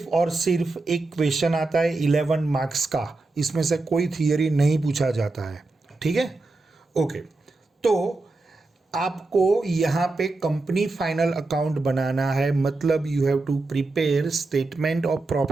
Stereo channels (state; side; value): quieter; left; 3.3 dB